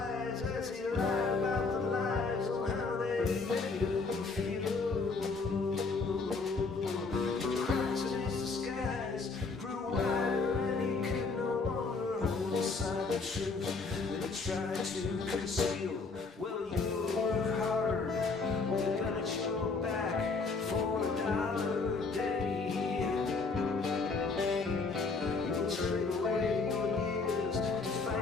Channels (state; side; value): quieter; right; 4.2 dB